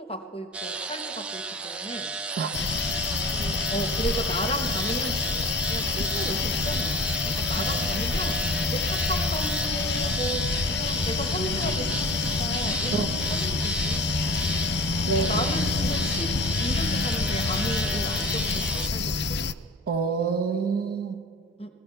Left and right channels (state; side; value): normal; both; correlation 0.38